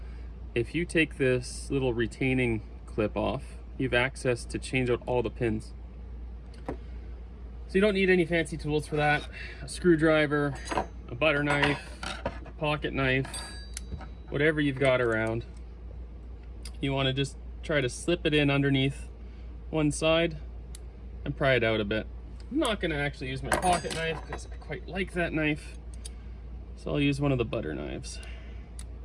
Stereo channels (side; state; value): both; identical; correlation 1.00